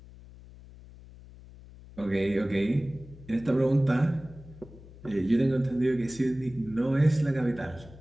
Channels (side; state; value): left; noise; hum, 19 dB below the sound